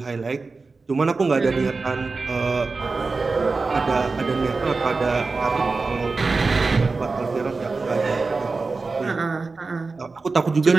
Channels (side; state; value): left; quieter; 4.0 dB